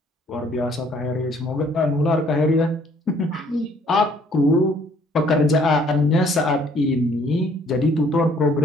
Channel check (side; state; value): both; normal; correlation 0.61